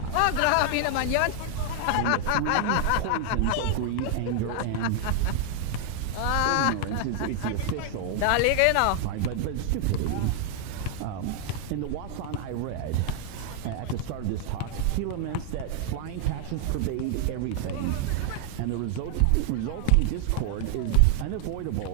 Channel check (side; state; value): both; different; correlation 0.00